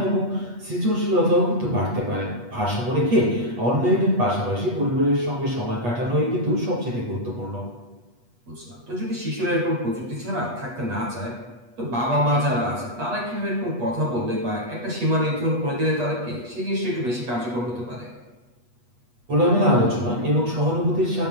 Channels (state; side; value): late; left; 8.3 ms